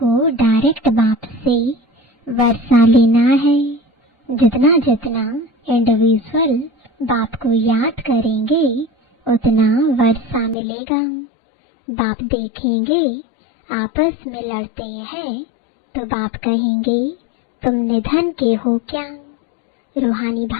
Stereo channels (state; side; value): drops out; right; at 10.6 s